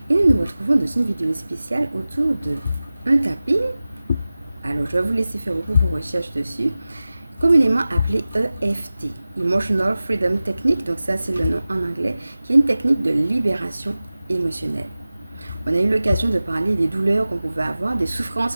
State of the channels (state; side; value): inverted; both; correlation -0.96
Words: et nous nous retrouvons dans une vidéo spéciale autour de un tapping. Alors je vais vous laisser faire beaucoup vos recherches dessus, communément appelé EFT, Emotional Freedom Technique, donc ça c'est le nom en anglais, qui est une technique de libération émotionnelle. On a eu l'occasion de parler des douleurs qu'on pouvait avoir, des souffrances